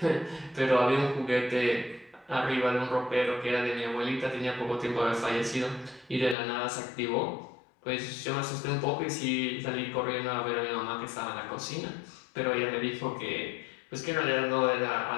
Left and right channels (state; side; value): drops out; right; at 6.4 s